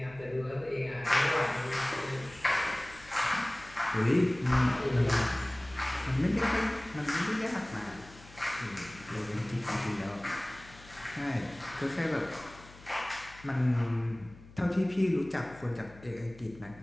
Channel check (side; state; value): left; noise; hum, 21 dB below the sound